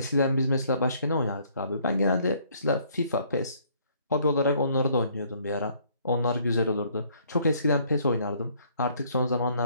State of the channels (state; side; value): inverted; both; correlation -0.63